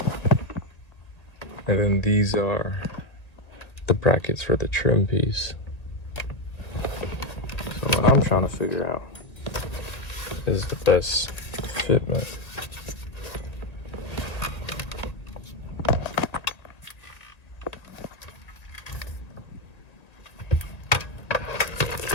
And then these are the brackets for the trim piece. So what I'm trying to figure out is the best fitment.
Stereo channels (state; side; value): late; right; 1.9 ms